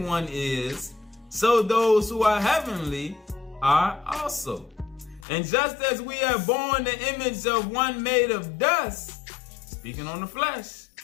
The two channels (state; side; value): drops out; right; at 5.2 s